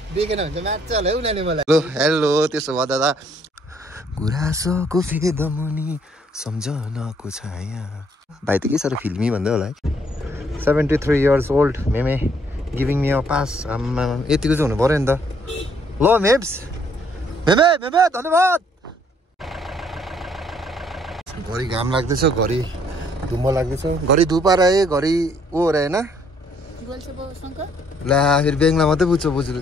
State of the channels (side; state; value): both; normal; correlation 0.66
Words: देखेन भने मार्छ होला उनीहरूले मलाई। हेलो त्यसो भए दादा गुराँसको फेदमुनि सम्झनाको छाया भाइ त के साह्रो फिल्मी भन्दै होला है। 73 years old मेमे गिभिङ मी अ पास। आम्मा यतिको चाहिँ हुनु पऱ्यो नि त। ल मेम्स मेमे मेमे धन्यवाद। घरि घाम लाग्दैछ, घरि धुम्म लाग्दैछ, घरि धुपार आए, घरि ओ हो र होइन ला फेरि बेङ्गला मात्रै बुझ्छ बुझ्नु।